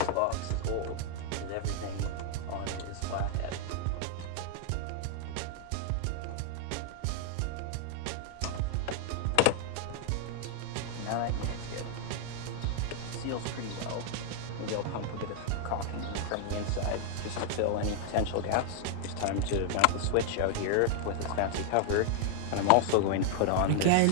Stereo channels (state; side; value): different; both; correlation 0.00